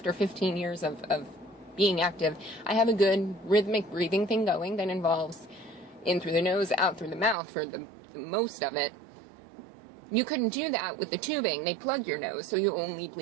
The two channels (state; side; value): drops out; left; at 7.4 s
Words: 15 years of being active, I have a good rhythmic breathing thing going that involves in through the nose, out through the mouth for the most of it. You couldn't do that with the tubing. They plug your nose, so you only